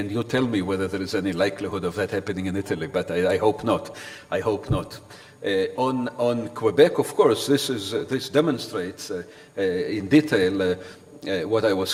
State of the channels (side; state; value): both; identical; correlation 1.00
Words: you tell me whether there is any likelihood of that happening in Italy, but I hope not. I hope not. On Quebec, of course, this demonstrates in detail what I